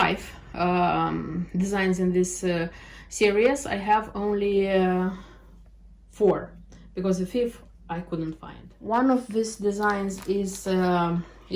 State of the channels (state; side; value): identical; both; correlation 1.00